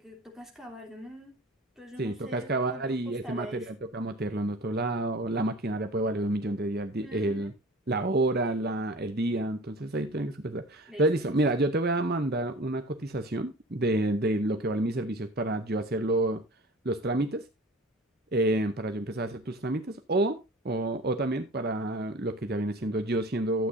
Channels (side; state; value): both; normal; correlation 0.40